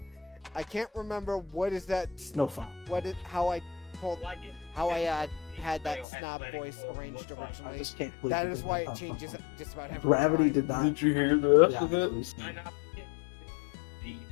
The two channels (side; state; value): right; drops out; at 6.1 s